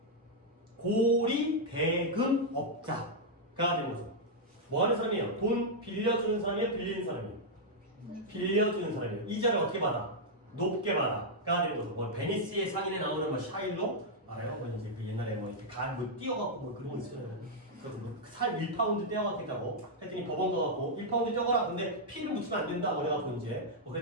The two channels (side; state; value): both; normal; correlation -0.04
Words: 고리대금업자가 되는 거죠. 뭐 하는 사람이에요? 돈 빌려주는 사람이에요? 빌리는 사람이에요? 빌려주는 사람이에요. 이자를 어떻게 받아? 높게 받아가 되는 거죠. 뭐 베니스의 상인에 나오는 뭐 샤일로 알아요? 뭐 이제 그 옛날에 뭐 이렇게 뛰어갖고 뭐 그런 거 있어요. 살 1파운드 떼어갔겠다고 했더니 법원 가갖고 1파운드 떼어가라. 근데 피를 묻히면 안 된다 그래갖고 이제 뭐